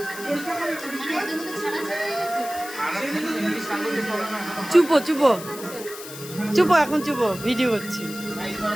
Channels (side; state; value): left; noise; hiss, 13 dB below the sound